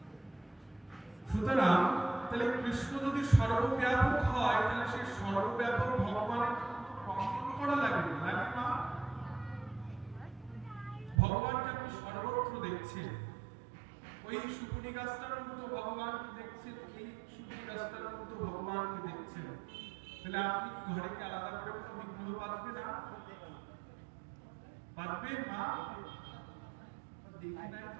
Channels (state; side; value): drops out; left; at 11.2 s